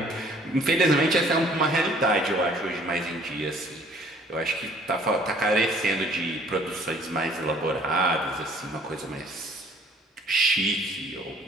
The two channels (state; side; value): normal; both; correlation 0.56